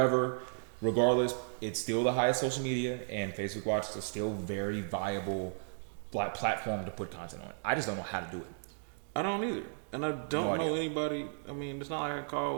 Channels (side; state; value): left; silent; digital silence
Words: regardless, it's still the highest social media, and Facebook Watch is still very viable platform to put content on. I just don't know how to do it. I don't either, and I don't know anybody. I mean, it's not like I